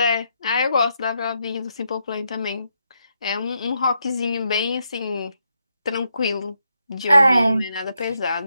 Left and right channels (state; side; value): inverted; both; correlation -0.81